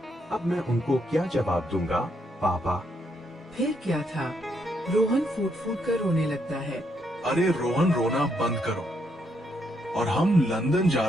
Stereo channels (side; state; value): both; normal; correlation 0.76